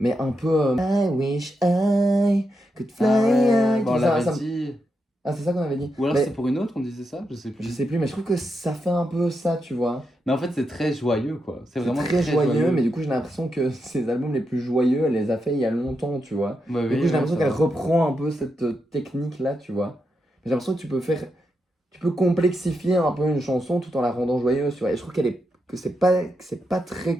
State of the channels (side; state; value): both; normal; correlation 0.84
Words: un peu I wish I could fly Ah ouais, high. bon, on Tout ça, l'avait ça me- dit. Ah, c'est ça qu'on avait dit. Ou alors Mais c'est pour une autre, on disait ça? Je sais je plus. sais plus, mais je trouve que ça fait un peu ça, tu vois. Mais en fait, c'est très joyeux, quoi. C'est C'est vraiment très joyeux, mais du coup j'ai l'impression que ces albums les plus joyeux, elle les a fait il y a longtemps, tu vois. Ouais, Du oui, coup j'ai ouais, l'impression ça qu'elle va. reprend un peu cette technique là, tu vois. J'ai l'impression que tu peux complexifier un peu une chanson tout en la rendant joyeuse, tu vois. Et je trouve que c'est pas